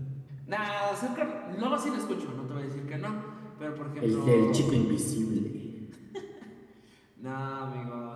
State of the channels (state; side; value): identical; both; correlation 1.00